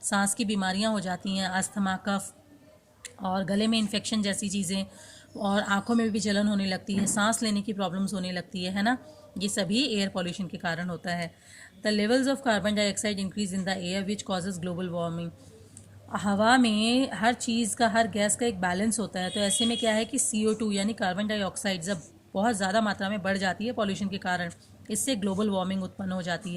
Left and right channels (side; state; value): both; identical; correlation 1.00